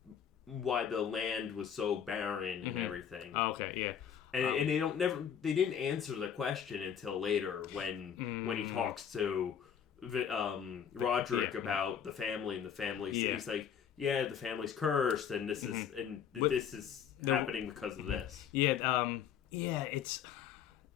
land was so barren and everything. Oh, okay, yeah. And they didn't answer the question until later when he talks to Roderick about the family, and the family he's like, yeah, the family's cursed, and this is happening because of this.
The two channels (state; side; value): quieter; right; 8.3 dB